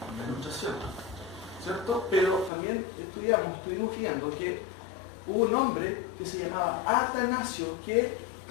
una ilustración, ¿cierto? Pero también estuvimos viendo que hubo un hombre que se llamaba Atanasio que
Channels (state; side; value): drops out; right; at 2.5 s